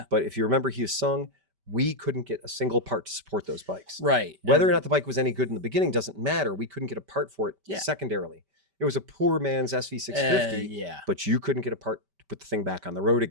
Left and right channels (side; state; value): left; late; 5.1 ms